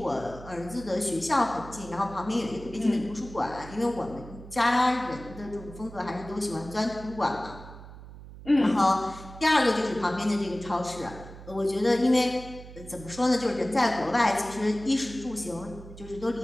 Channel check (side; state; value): right; noise; hum, 15 dB below the sound